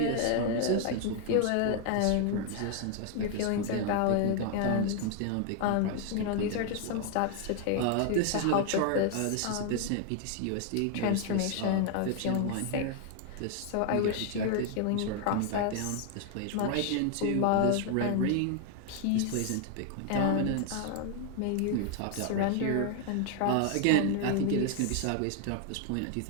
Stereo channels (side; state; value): both; different; correlation 0.00